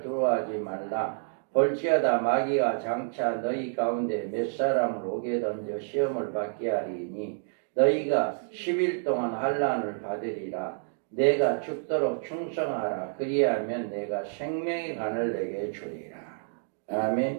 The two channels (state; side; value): silent; left; digital silence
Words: 두려워하지 말라. 볼지어다 마귀가 장차 너희 가운데 몇 사람을 오게 던져 시험을 받게 하리니 너희가 10일 동안 환난을 받으리라. 내가 죽도록 충성하라. 그리하면 내가 생명의 간을 내게 주리라.